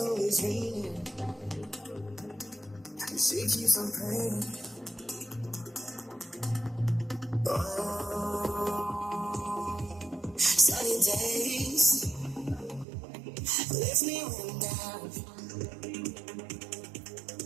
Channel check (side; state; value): left; drops out; at 12.9 s